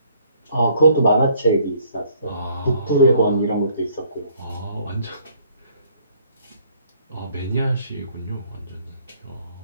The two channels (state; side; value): inverted; both; correlation -0.63